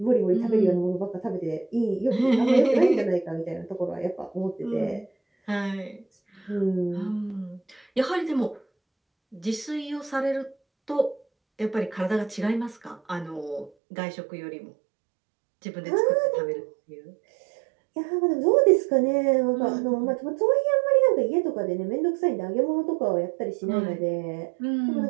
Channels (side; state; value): left; drops out; at 13.7 s